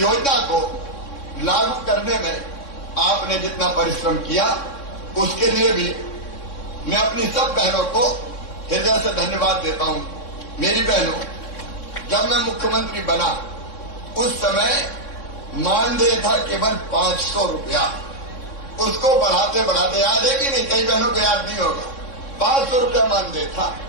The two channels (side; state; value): right; late; 3.6 ms